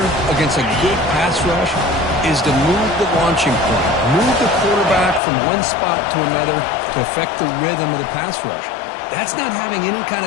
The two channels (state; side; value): drops out; right; at 5.2 s